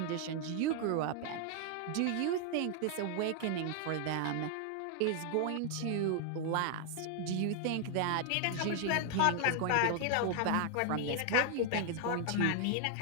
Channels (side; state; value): both; different; correlation 0.00